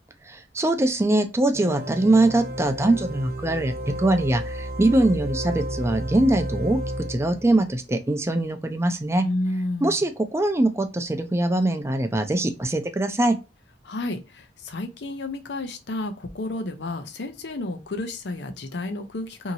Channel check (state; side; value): normal; both; correlation 0.82